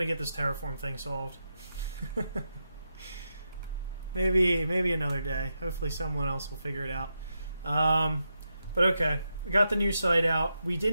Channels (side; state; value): both; inverted; correlation -0.86